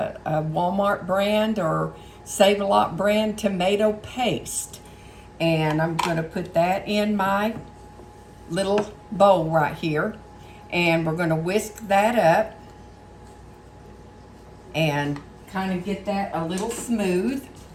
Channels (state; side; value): identical; both; correlation 1.00